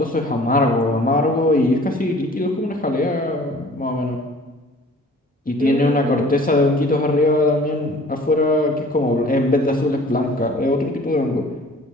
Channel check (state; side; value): normal; both; correlation 0.50